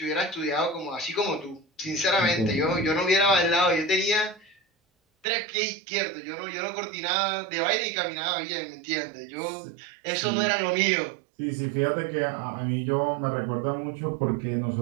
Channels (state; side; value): drops out; left; at 5.2 s